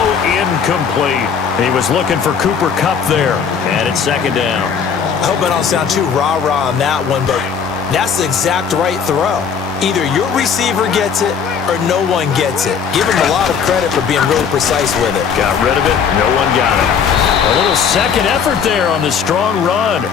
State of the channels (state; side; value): quieter; right; 6.8 dB